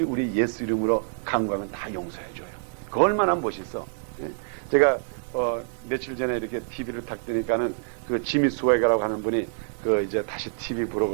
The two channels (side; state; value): left; silent; digital silence